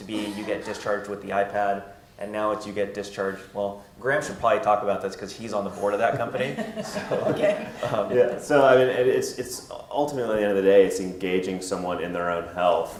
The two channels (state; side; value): identical; both; correlation 1.00